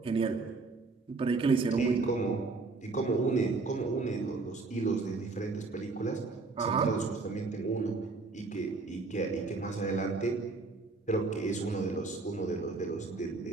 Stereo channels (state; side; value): quieter; left; 3.9 dB